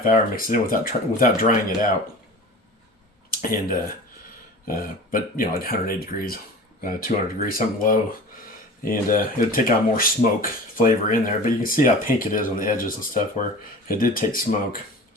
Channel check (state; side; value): normal; both; correlation 0.37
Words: hour, mix it in without drying it out. And but like 180 degrees, 200 degrees, something low, and it'll take on more smoke flavor in there. But you can see how pink it is on the edges and stuff where it did take smoke.